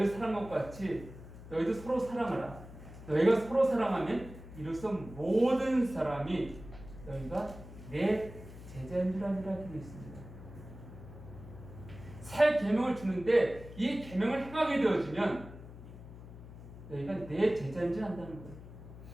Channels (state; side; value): noise; left; hum, 15 dB below the sound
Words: 사랑한 것 같이 너희도 서로 사랑하라. 너희가 서로 사랑하면 이로써 모든 사람이 너희가 내 제자인 줄 아니라 되어 있습니다. 새 계명을 주는데 이 계명을 행하게 되어지면 너희가 내 제자인 줄 안다는